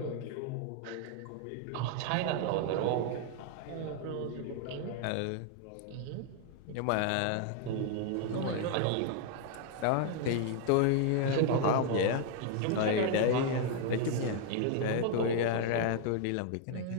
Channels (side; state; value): both; different; correlation 0.00